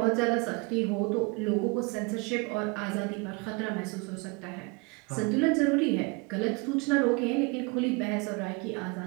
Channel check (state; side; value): quieter; left; 28.6 dB